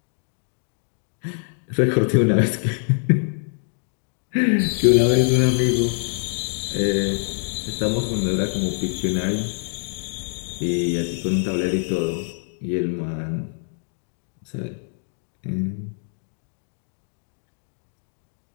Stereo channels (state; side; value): silent; right; digital silence